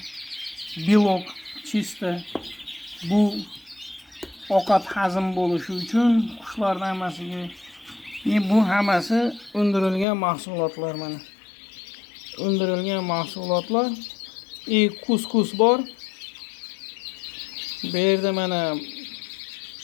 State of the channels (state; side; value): drops out; right; at 10.1 s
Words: belok chista. Bu ovqat hazm bo'lishi uchun qushlarning hammasiga bu hammasi undirilgan mahsulotlar mana. Undirilgan mahsulotlar. Kuskus bor. Bu yerda mana